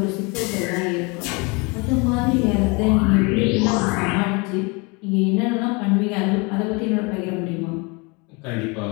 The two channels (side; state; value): right; quieter; 28.9 dB